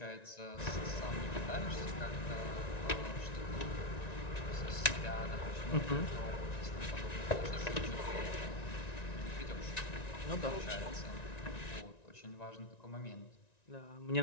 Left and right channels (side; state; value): right; late; 1.9 ms